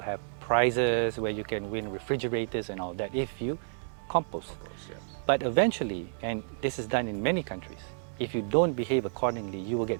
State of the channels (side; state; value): left; silent; digital silence